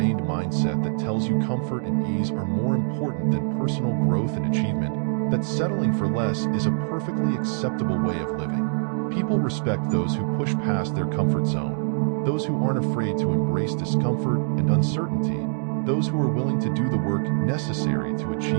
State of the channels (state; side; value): silent; left; digital silence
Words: mindset that tells you comfort and ease are more important than personal growth and achievement, that settling for less is a perfectly acceptable way of living. People respect those who push past their comfort zone, those who aren't afraid to embrace discomfort and uncertainty, those who are willing to do the work necessary to